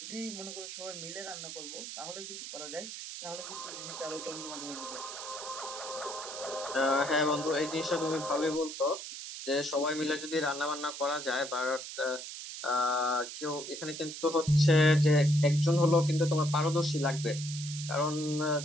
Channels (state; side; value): noise; right; hiss, 9 dB below the sound